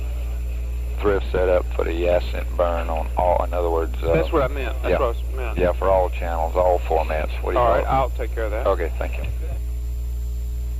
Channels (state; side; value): identical; both; correlation 1.00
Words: thrift set up for the Ascent burn on all, in other words... That's what I meant. That's yeah. what I meant. Yeah, for all channels, all formats. What do you All call right, it? I'll take care of that. Okay, thank you.